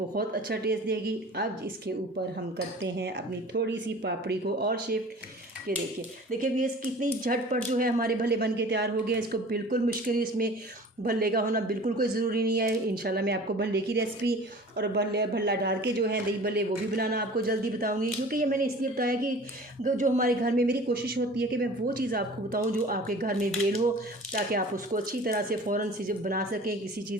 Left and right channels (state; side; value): normal; both; correlation 0.43